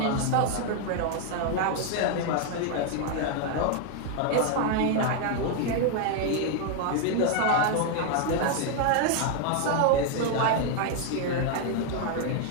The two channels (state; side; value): different; both; correlation 0.00